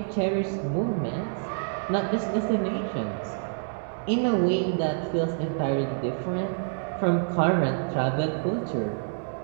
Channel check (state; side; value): silent; left; digital silence